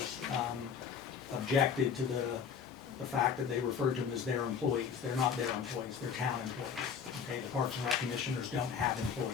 objected to the fact that they referred to them as their employees. They're not their employees, they're town employees. Okay, the Parks and Rec commissioners don't have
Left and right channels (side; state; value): right; quieter; 6.8 dB